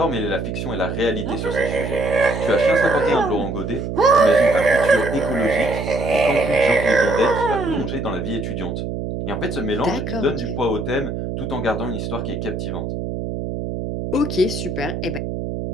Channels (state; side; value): noise; right; hum, 4 dB below the sound